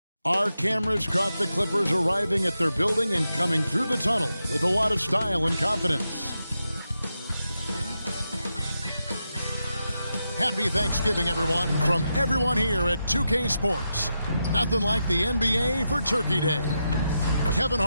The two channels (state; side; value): inverted; both; correlation -0.87